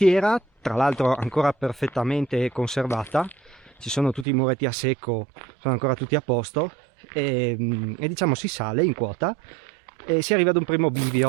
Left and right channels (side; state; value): left; drops out; at 4.2 s